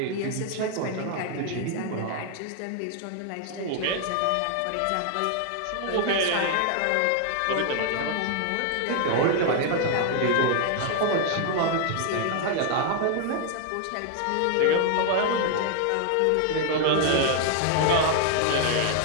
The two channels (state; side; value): different; both; correlation 0.00